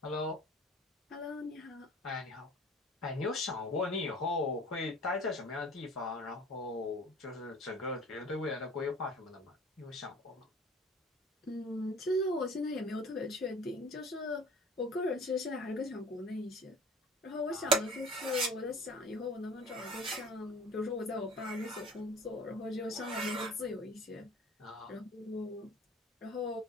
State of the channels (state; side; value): normal; both; correlation 0.45